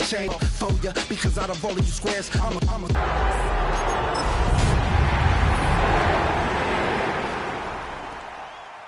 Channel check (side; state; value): both; identical; correlation 1.00